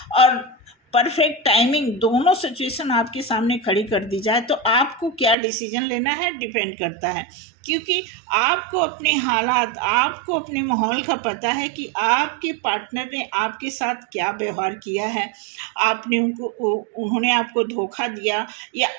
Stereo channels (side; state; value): left; drops out; at 5.4 s